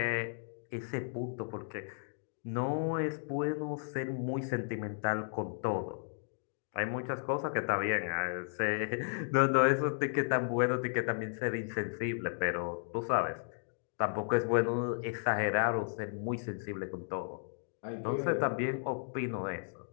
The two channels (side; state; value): right; silent; digital silence